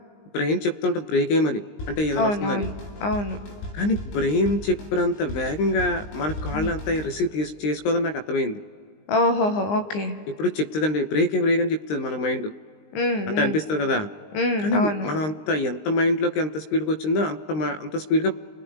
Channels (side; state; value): right; late; 19 ms